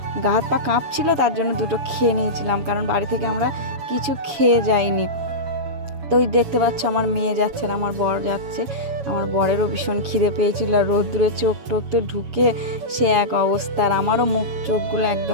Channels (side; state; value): left; late; 7.2 ms